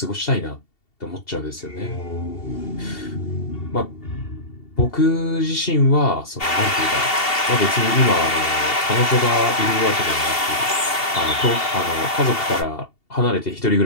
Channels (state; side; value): late; right; 2.7 ms